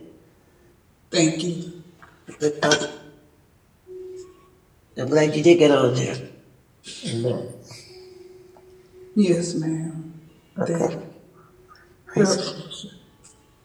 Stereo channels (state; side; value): identical; both; correlation 1.00